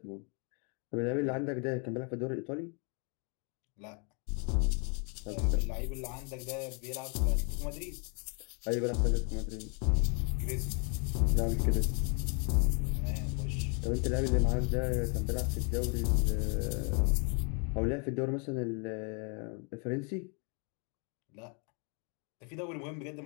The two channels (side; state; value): right; quieter; 36.7 dB